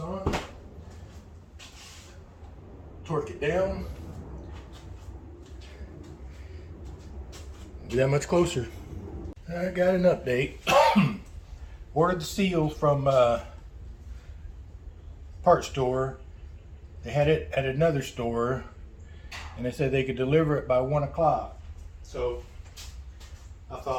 Torque it down. Be that much closer. I got an update. Ordered the seals from part store. They had it at another store, and they said they could deliver it by 1 o'clock. So I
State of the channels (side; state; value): both; identical; correlation 1.00